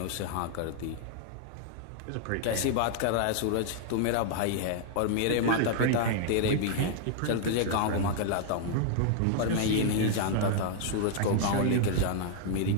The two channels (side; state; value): both; different; correlation -0.01